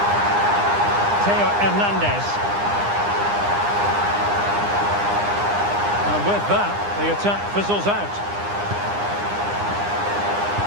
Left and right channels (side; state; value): left; late; 9.8 ms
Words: Theo Hernandez. And with that, the attack fizzles out.